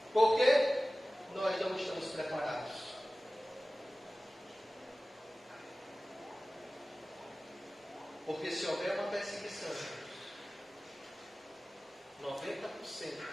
Por quê? Nós não estamos preparados. Porque se houver uma perseguição, 90%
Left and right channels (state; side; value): normal; both; correlation 0.97